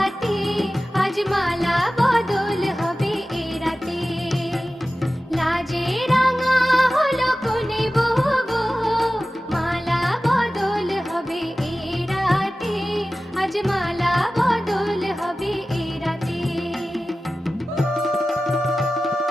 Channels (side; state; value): both; normal; correlation 0.95